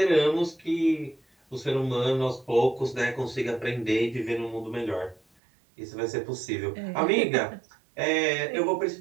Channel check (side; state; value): left; drops out; at 5.2 s